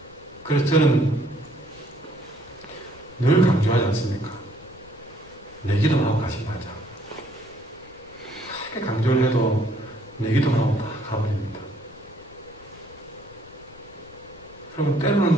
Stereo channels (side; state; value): left; noise; rumble, 24 dB below the sound